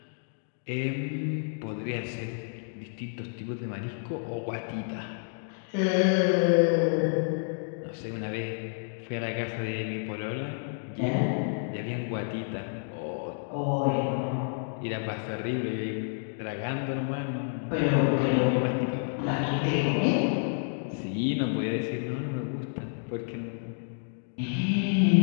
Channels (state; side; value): silent; right; digital silence